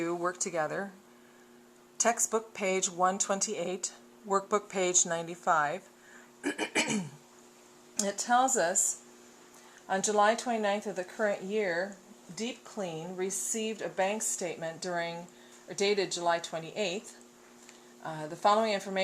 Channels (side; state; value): both; identical; correlation 1.00